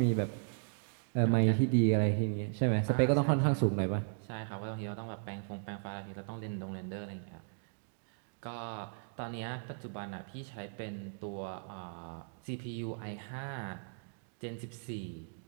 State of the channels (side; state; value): left; silent; digital silence